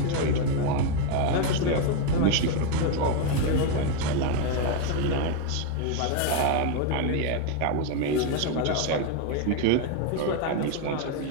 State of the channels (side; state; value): both; different; correlation 0.02